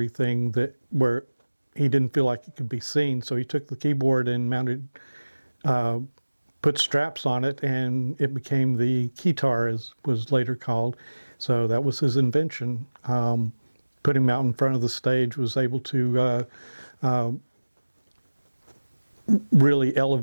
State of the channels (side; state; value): both; inverted; correlation -1.00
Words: where he didn't feel like it could be seen. So he took the keyboard and mounted put straps on it, and it became the keytar, as was later called. So that was his invention. Put him out in front of the stage, was able to really